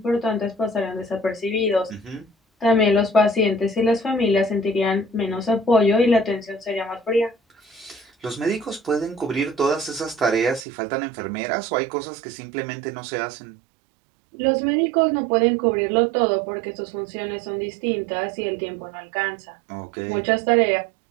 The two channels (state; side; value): drops out; left; at 10.7 s